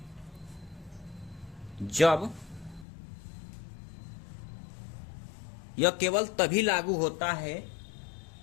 जब, यह केवल तभी लागू होता है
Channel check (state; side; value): drops out; right; at 2.9 s